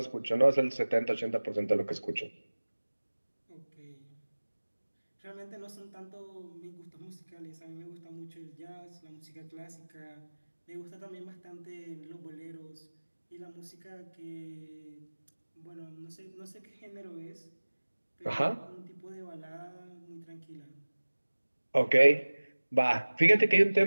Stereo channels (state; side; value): inverted; both; correlation -1.00